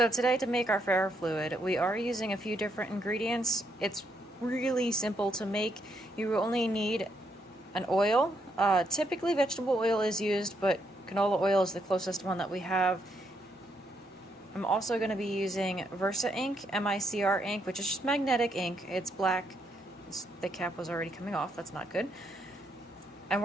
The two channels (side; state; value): both; normal; correlation 0.76